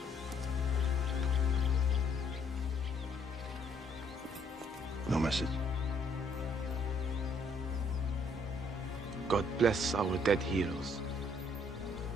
No message. God bless our dead heroes.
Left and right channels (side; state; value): both; normal; correlation 0.67